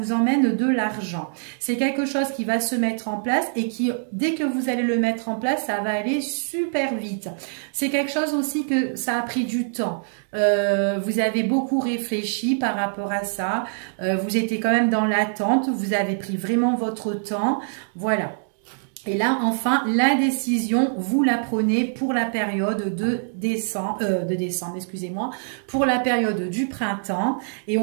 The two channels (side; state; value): left; silent; digital silence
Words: emmène de l'argent. C'est quelque chose qui va se mettre en place et qui, dès que vous allez le mettre en place, ça va aller super vite. C'est quelque chose aussi que ça a pris du temps. Vous avez beaucoup réfléchi par rapport à ça. Vous étiez quand même dans l'attente. Vous avez pris vraiment votre temps. Voilà. Et là, enfin, la décision, vous la prenez pour la période de décembre, excusez-moi, pour la période du printemps. Et